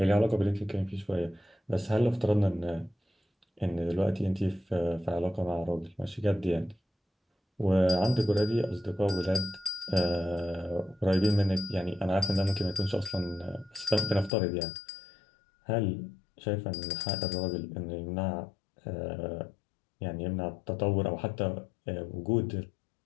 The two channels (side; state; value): right; drops out; at 14.3 s